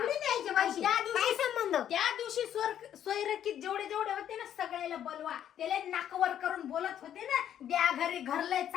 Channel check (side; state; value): right; quieter; 10.2 dB